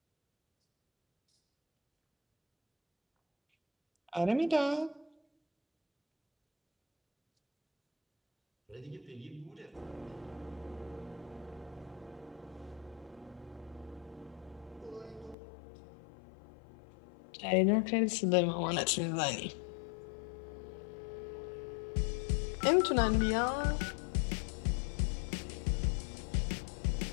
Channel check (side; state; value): right; drops out; at 15.4 s